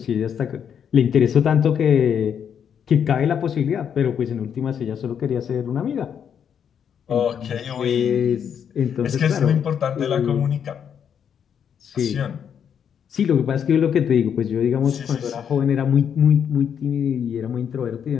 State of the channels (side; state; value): right; quieter; 8.1 dB